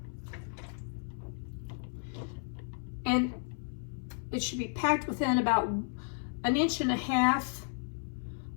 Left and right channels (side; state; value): right; silent; 55 dB below the other